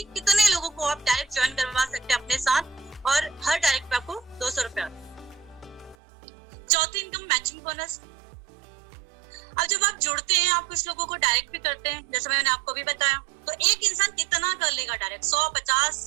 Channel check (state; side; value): drops out; left; at 6.0 s